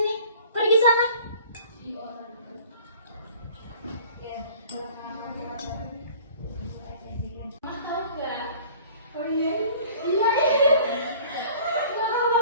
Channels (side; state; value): both; inverted; correlation -0.48